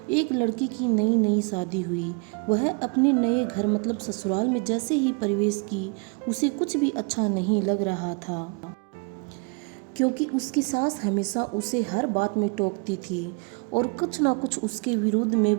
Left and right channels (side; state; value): left; quieter; 34.7 dB